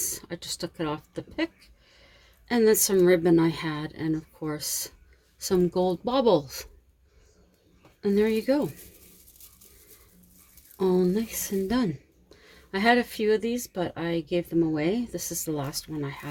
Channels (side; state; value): both; identical; correlation 1.00